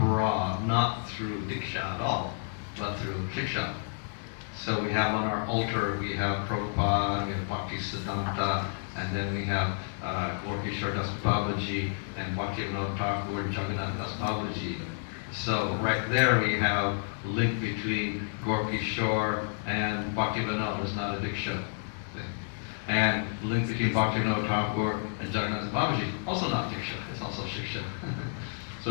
not through Diksha at all, but through Shiksha. So we have on our altar, we have Prabhupada, we have Bhaktisiddhanta, and then we have Gorkishore Das Babaji and Bhaktivinoda Thakur and Jagannath Das Babaji. So right there we have a link between Gorkishore and Bhaktivinoda. It's not a Diksha thing. And the link between Bhaktivinoda Thakur and Jagannath Babaji, also not Diksha, it's also Shiksha.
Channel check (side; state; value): right; silent; digital silence